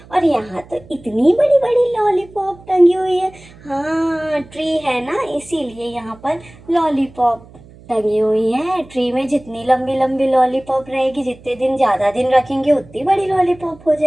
और यहाँ तो इतनी बड़ी बड़ी लॉलीपॉप टंगी हुई है। हाँ, ट्री है ना, इसीलिए यहाँ पर लॉलीपॉप टंगी हुई है। ट्री में जितनी लंबी लंबी लॉलीपॉप रहेगी, जितने दिन ज़्यादा दिन रखेंगे उतनी बड़ी लॉलीपॉप हो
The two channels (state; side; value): noise; right; hum, 22 dB below the sound